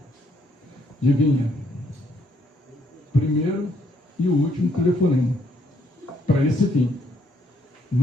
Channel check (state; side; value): normal; both; correlation 0.70